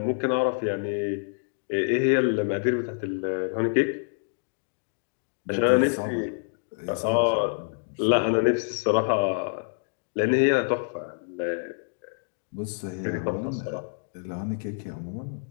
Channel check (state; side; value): silent; right; digital silence